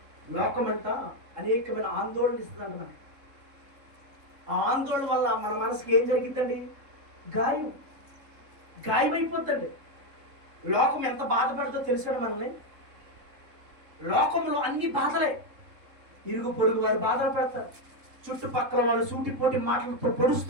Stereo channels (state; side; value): late; left; 3.7 ms